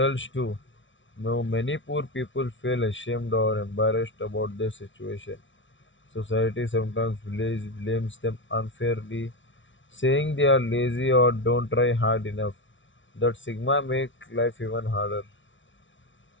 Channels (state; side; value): late; right; 0.56 ms